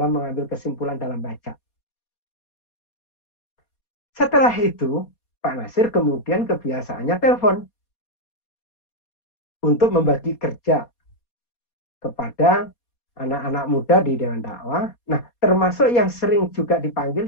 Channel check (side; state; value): right; late; 4.2 ms